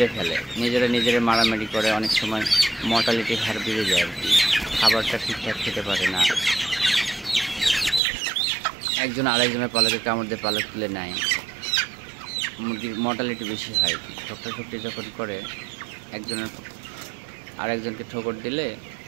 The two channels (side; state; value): left; drops out; at 8.0 s